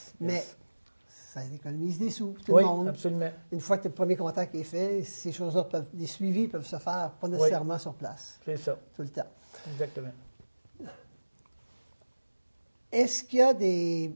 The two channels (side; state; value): both; inverted; correlation -1.00